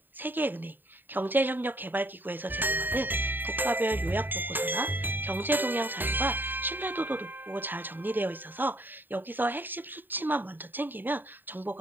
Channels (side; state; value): left; late; 0.092 ms